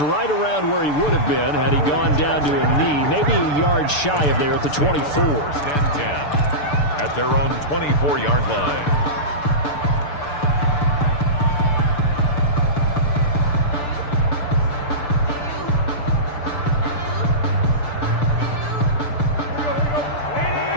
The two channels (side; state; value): right; late; 6.8 ms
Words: around where he would have been had he gone down to a knee, maybe a yard shy of there at the 24. First and 10 at their own 24-yard line.